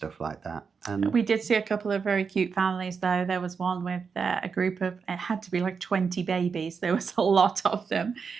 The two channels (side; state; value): left; quieter; 5.6 dB